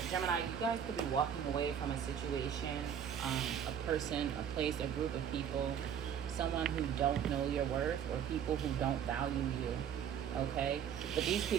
Gemini, you guys could be walking away from a situation, a person, a place, a group of people, someone who don't know your worth, or people who don't value you. Okay, but these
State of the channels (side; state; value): left; quieter; 8.6 dB